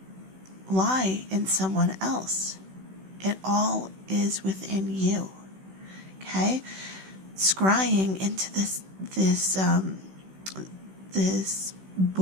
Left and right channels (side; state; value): left; late; 16 ms